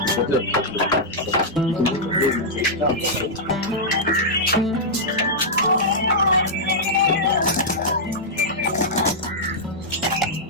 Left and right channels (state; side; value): normal; both; correlation -0.08